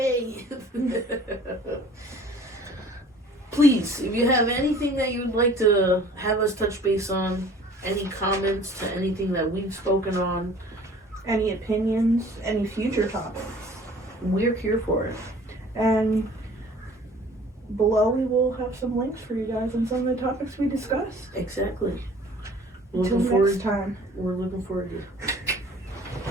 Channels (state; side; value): normal; both; correlation 0.50